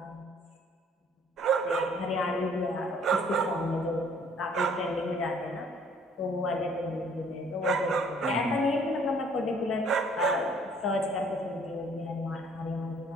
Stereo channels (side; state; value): both; normal; correlation 0.59